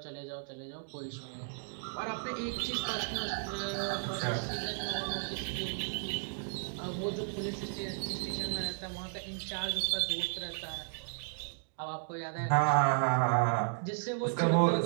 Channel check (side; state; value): left; silent; digital silence